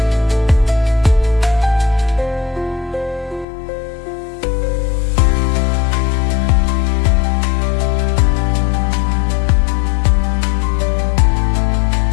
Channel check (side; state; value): right; drops out; at 3.5 s